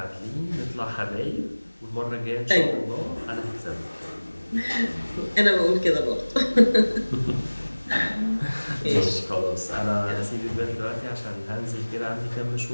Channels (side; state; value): both; inverted; correlation -1.00